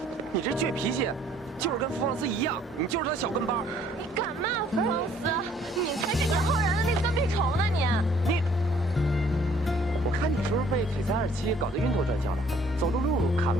你这倔脾气，就是跟福旺斯一样，你就是他小跟班。你敢骂福旺斯？你才是杨浩然的那个跟屁虫呢！你，我看你是不是被璀璨27搞得晕头转向了？走路路看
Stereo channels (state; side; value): normal; both; correlation 0.60